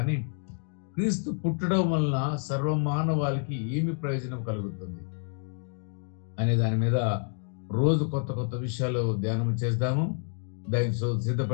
క్రీస్తు పుట్టడం వలన సర్వమానవాళికి ఏమి ప్రయోజనం కలుగుతుంది అనే దాని మీద రోజు కొత్త కొత్త విషయాలు ధ్యానం చేద్దాము. దానికి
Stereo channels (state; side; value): silent; right; 56 dB below the other